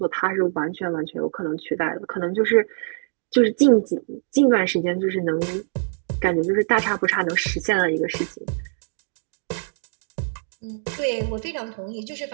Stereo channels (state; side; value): silent; left; digital silence